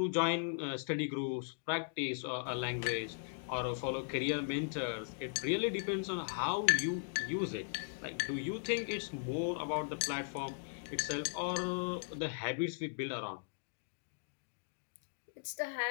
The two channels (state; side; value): silent; right; digital silence